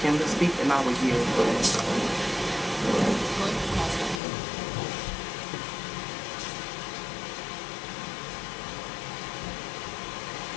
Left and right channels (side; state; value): right; drops out; at 4.2 s